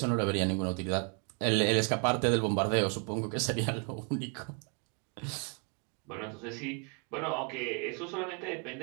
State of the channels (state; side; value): quieter; left; 36.3 dB